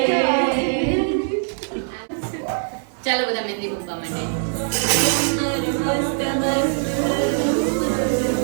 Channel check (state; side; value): silent; left; digital silence